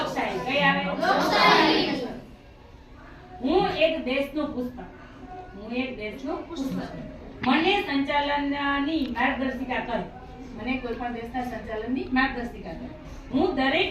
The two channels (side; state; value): both; identical; correlation 1.00